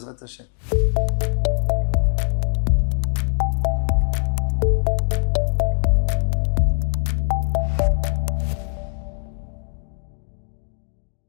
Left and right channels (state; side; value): silent; right; 56 dB below the other